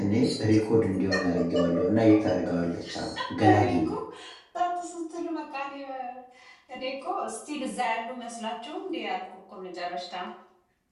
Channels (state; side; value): identical; both; correlation 1.00